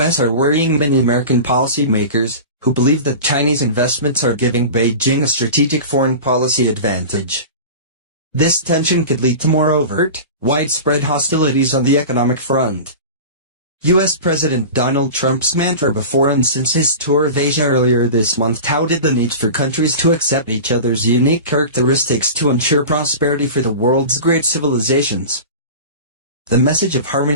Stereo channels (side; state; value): both; inverted; correlation -0.32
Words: are worrying many American policymakers, who believe that Chinese investments are giving Beijing a strategic foreign policy advantage. This tension could lead to more overt, widespread hostilities on the economic front. U.S. President Donald Trump's mantra before and since his tour of Asia earlier this month touted the need for countries to accept each other's unique characteristics to ensure prosperity for the world's great civilizations. The message of